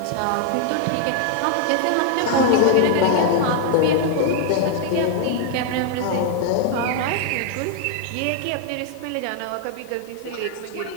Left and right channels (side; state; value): both; different; correlation 0.00